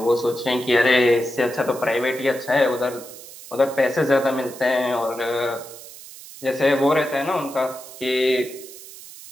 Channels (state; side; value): noise; right; hiss, 16 dB below the sound